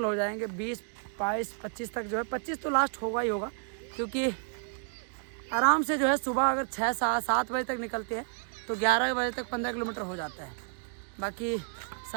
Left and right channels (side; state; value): left; silent; 57 dB below the other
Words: हो जाएंगे। 20, 22, 25 तक जो है, 25 तो लास्ट होगा ही होगा, क्योंकि आराम से जो है सुबह अगर 6-7 बजे तक निकलते हैं तो 11 बजे तक 15 किलोमीटर हो जाता है। बाकी